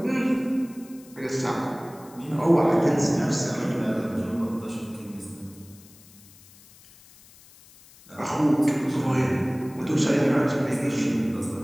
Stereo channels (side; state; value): left; noise; hiss, 24 dB below the sound